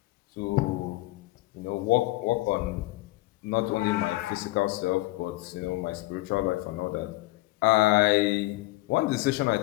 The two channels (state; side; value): quieter; right; 20.0 dB